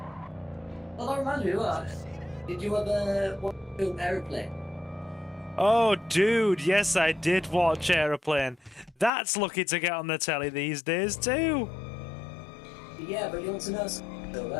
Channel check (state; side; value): drops out; right; at 9.1 s